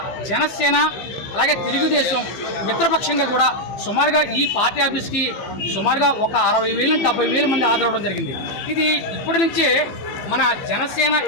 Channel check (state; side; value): late; right; 15 ms